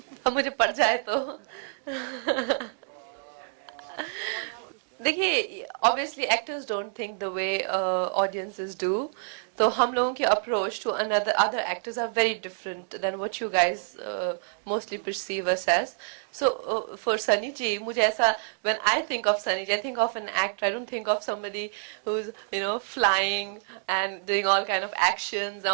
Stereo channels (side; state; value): left; silent; 60 dB below the other